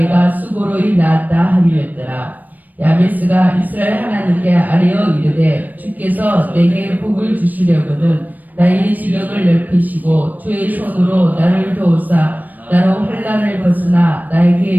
수고로이 낳았다 함이었더라. 야베스가 이스라엘 하나님께 아뢰어 이르되 주께서 내게 복을 주시려거든 나의 지경을 넓히시고 주의 손으로 나를 도우사 나로 환난을 벗으나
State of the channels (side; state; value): left; late; 0.084 ms